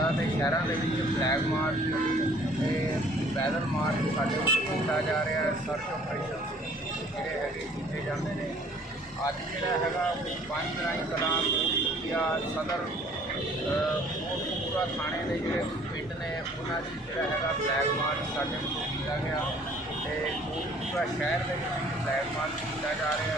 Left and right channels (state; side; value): normal; both; correlation 0.55